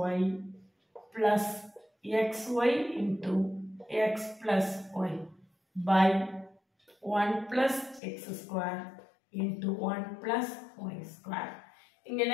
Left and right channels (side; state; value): right; drops out; at 8.0 s